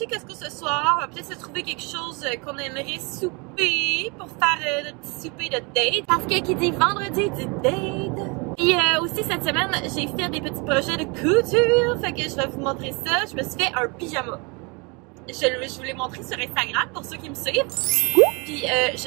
Costco ce soir. On va peut-être se trouver quelque chose qu'on aimerait souper pour faire notre petit souper de date. Parce que qui dit vendredi dit date. Puis aussi cette semaine, j'ai fait des petits projets de couture. Fait que je vais vous montrer ça. Je me suis fait un pyjama. Je vous l'ai montré sur Instagram pour ceux qui me suivent. Puis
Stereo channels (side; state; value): left; quieter; 30.0 dB